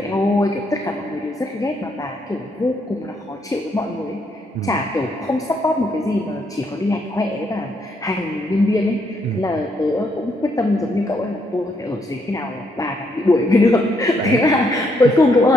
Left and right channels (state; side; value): normal; both; correlation 0.75